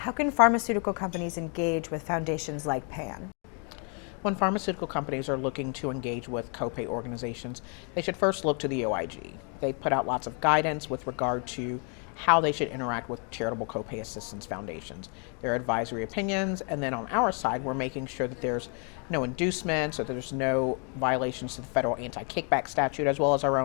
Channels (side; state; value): right; quieter; 38.6 dB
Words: can pharmaceutical companies engage with foundations like PAN? When pharmaceutical companies are looking to engage with copay organizations, they should first look to the OIG. They put out lots of guidance with regard to how they should interact with charitable copay assistance foundations. Their advisory opinions, and then on our side, we're making sure that there's no inducements or there's no violations to the federal anti-kickback statute, as well as our